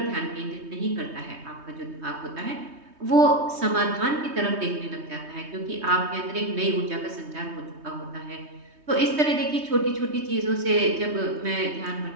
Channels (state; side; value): late; left; 3.2 ms